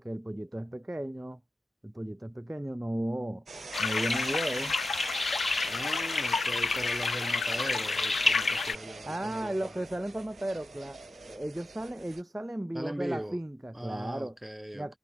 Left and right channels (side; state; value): both; normal; correlation 0.91